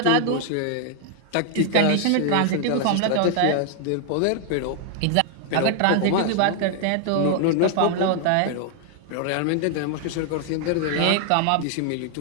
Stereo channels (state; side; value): different; both; correlation 0.00